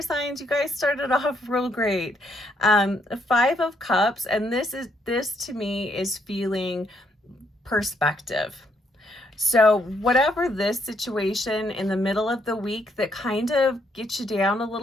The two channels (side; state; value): both; normal; correlation 0.73